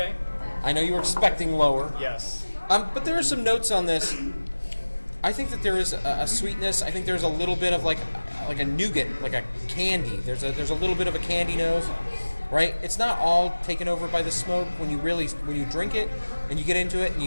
I know you were expecting lower. Yes. But there are some notes on this. I think that there is a sweetness. I think there's a little bit of like a nougat, like a candy. There's a little bit of a candy nose, right? It's not all taken over by the smoke when you drink it and you get into it and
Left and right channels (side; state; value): both; inverted; correlation -1.00